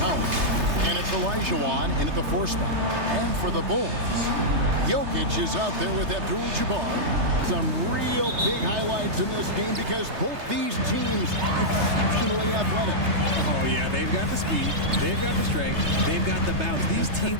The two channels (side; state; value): left; late; 3.3 ms